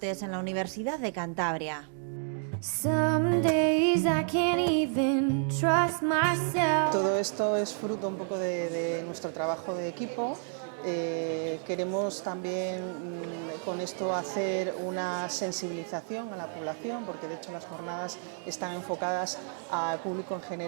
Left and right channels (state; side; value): silent; left; 58 dB below the other